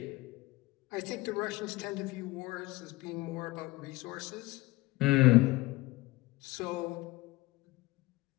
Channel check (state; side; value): quieter; right; 20.9 dB